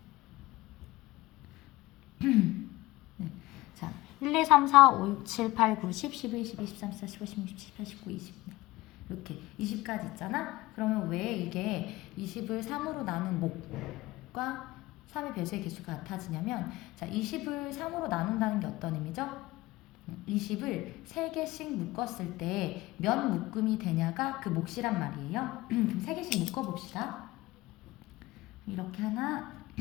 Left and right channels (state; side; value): quieter; right; 19.2 dB